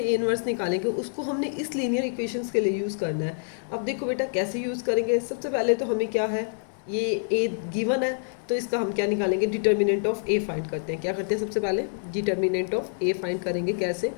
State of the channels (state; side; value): silent; right; digital silence